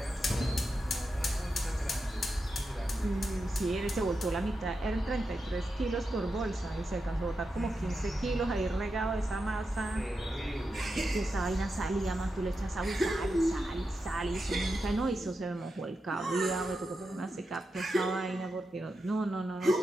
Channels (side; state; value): both; normal; correlation 0.88